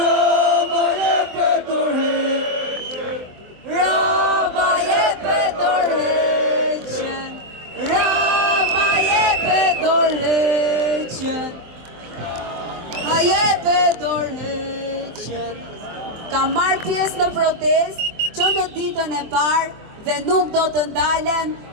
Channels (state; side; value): late; left; 24 ms